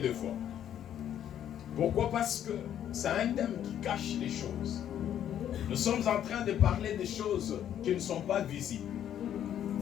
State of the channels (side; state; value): right; quieter; 10.3 dB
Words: fois. Pourquoi? Parce que c'est un thème qui cache les choses. Nous sommes en train de parler des choses qui ne sont pas visibles.